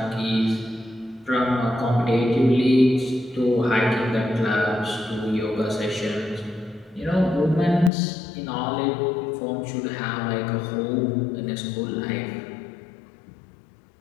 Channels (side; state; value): right; drops out; at 7.9 s